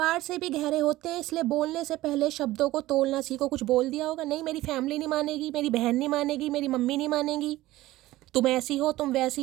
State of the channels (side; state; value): left; quieter; 16.9 dB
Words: से भी गहरे होते हैं, इसलिए बोलने से पहले शब्दों को तोलना सीखो। कुछ बोल दिया होगा, नहीं मेरी फैमिली नहीं मानेगी, मेरी बहन नहीं मानेगी, मेरी मम्मी नहीं मानेगी, तुम ऐसी हो, तुम